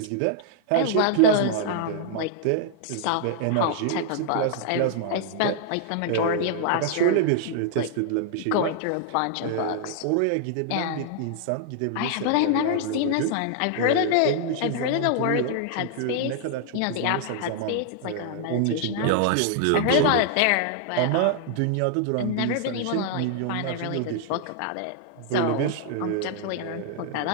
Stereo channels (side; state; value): both; different; correlation 0.00